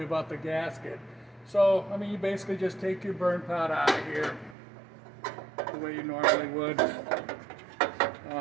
about the gasket. So, I mean, you basically just take your burn pot out of here the way you normally would.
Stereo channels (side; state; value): left; drops out; at 4.5 s